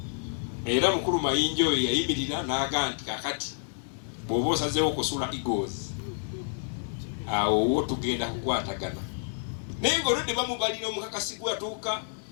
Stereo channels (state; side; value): silent; right; 59 dB below the other